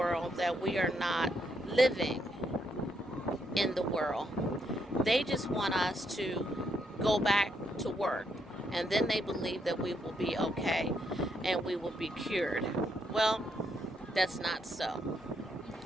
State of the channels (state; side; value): normal; both; correlation 0.76